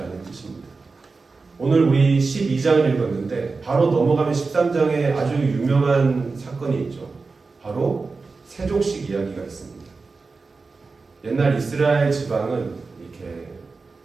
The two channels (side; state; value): left; quieter; 4.2 dB